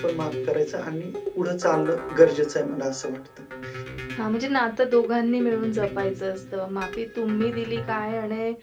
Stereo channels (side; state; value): both; identical; correlation 1.00